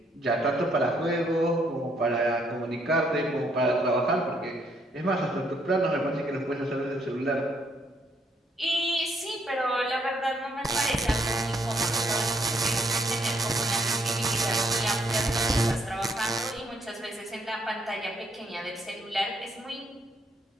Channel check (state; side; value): normal; both; correlation 0.70